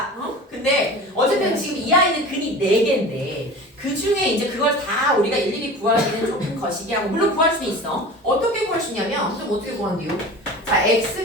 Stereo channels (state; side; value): normal; both; correlation 0.36